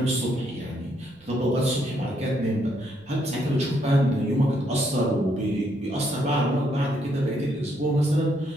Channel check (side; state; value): right; noise; rumble, 28 dB below the sound